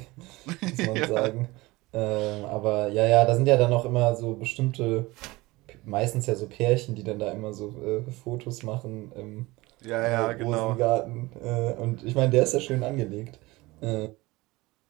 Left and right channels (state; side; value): quieter; left; 21.2 dB